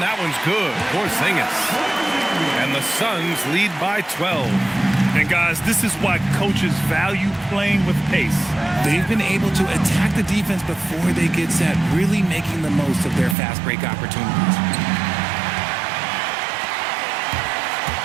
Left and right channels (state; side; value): drops out; left; at 13.4 s